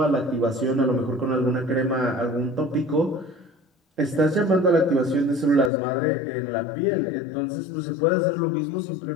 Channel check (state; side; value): drops out; right; at 5.7 s